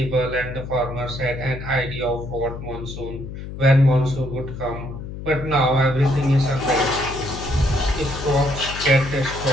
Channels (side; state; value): left; noise; hum, 9 dB below the sound